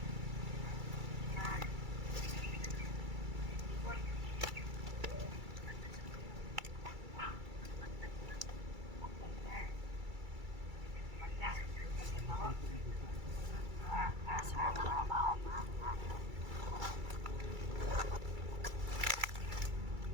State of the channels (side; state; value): left; late; 2.3 ms